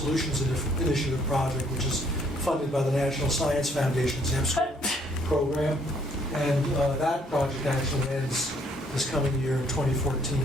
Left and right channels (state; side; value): normal; both; correlation 0.65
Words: Initiative project, which is funded by the National Science Foundation's MSchool program. And that project actually ends this coming year in 2014